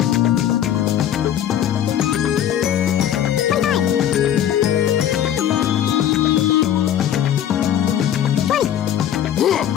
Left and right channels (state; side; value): quieter; right; 10.4 dB